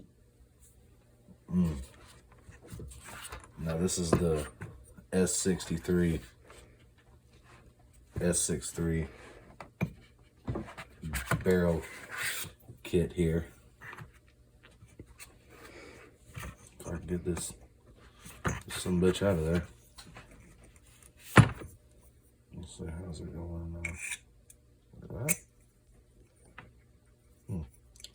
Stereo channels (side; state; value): both; identical; correlation 1.00